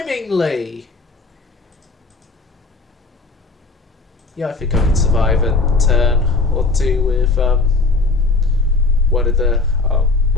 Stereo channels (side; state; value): right; quieter; 3.7 dB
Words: Yeah, I think I can survive a turn or two with one of the